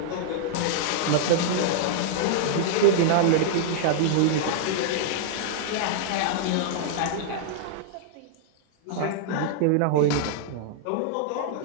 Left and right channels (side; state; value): both; different; correlation -0.01